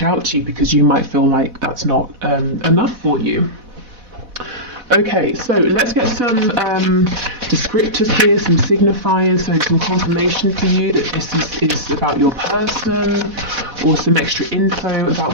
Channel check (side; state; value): left; late; 4.1 ms